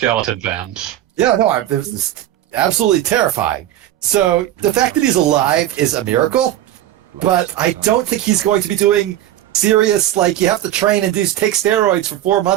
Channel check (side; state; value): left; quieter; 12.8 dB